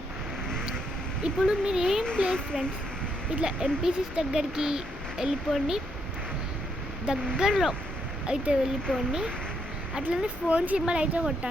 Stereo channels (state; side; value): normal; both; correlation 0.76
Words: ఇప్పుడు మీరు ఏం ప్లేస్ ఫ్రెండ్స్, ఇట్లా ఎంపీసీస్ దగ్గరికి వెళ్ళిపోండి, దగ్గరలో అయితే వెళ్ళిపోండి. అట్లనే ఫోన్ సింబల్ అయితే